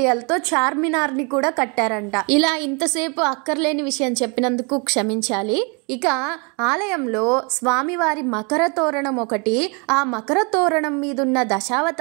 తో చార్మినార్ ని కూడా కట్టారంట. ఇలా ఇంతసేపు అక్కర్లేని విషయం చెప్పినందుకు క్షమించాలి. ఇక ఆలయంలో స్వామివారి మకర తోరణం ఒకటి, ఆ మకర తోరణం మీదున్న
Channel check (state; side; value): quieter; left; 33.1 dB